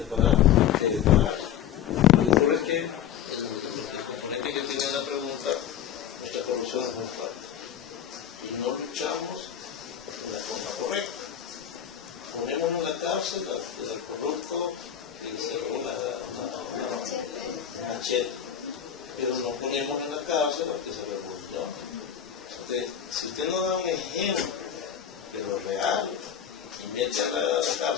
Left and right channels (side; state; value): right; quieter; 9.5 dB